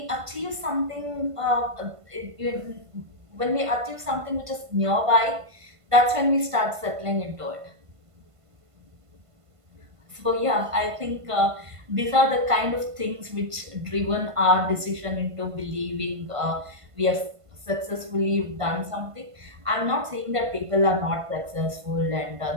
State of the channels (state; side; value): late; left; 1.5 ms